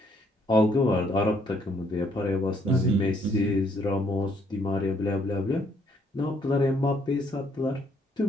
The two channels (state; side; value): normal; both; correlation 0.68